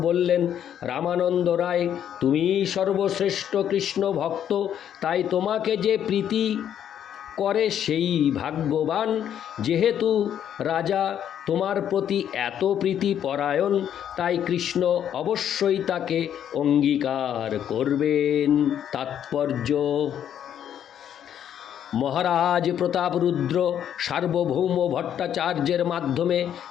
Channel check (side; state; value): right; quieter; 9.7 dB